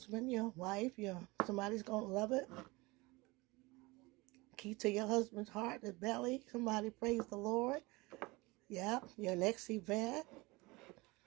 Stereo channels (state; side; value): quieter; left; 23.4 dB